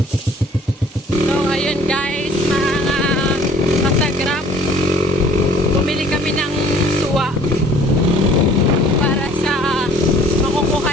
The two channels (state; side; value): normal; both; correlation 0.54